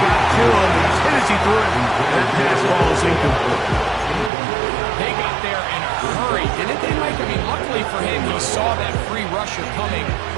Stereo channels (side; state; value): left; drops out; at 4.3 s